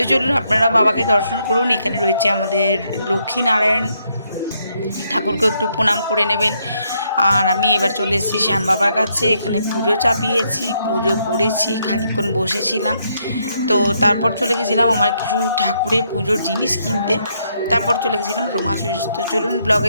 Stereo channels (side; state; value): both; inverted; correlation -0.75